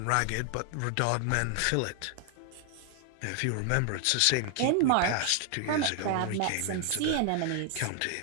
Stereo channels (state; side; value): different; both; correlation 0.00